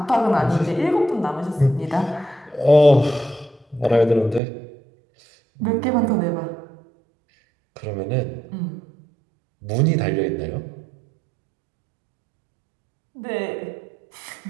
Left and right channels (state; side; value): drops out; left; at 4.4 s